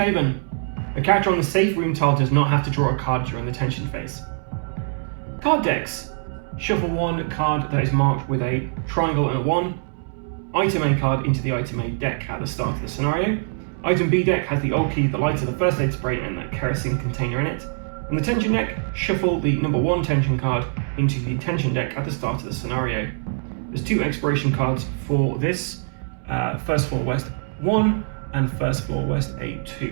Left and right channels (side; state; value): left; silent; 63 dB below the other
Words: A character on the safe room tile does not have to draw a card during the tension phase. Card decks. Shuffle one card that is marked with a triangle and a 1. Item A card into the item A deck at the start of the scenario. Item B deck has the old key, the lighter, the first aid spray, and that kerosene container in it. On the tension deck, shuffle the number 1 tension card into the tension deck at the start of the scenario. There's 2 expiration cards for this, First Floor West 1 and First Floor West